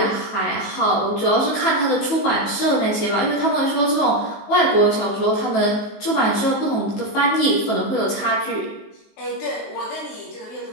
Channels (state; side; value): late; right; 18 ms